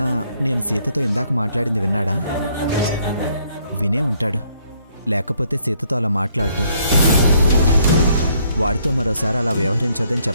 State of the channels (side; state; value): both; inverted; correlation -0.68